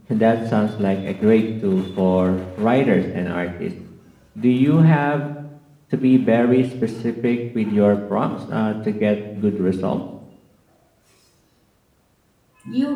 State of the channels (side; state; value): both; identical; correlation 1.00